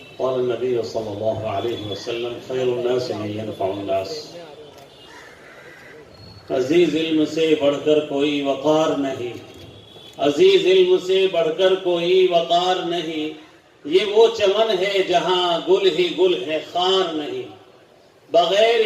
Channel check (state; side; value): identical; both; correlation 1.00